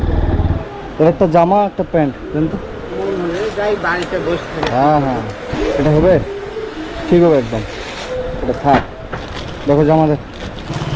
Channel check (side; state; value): both; identical; correlation 1.00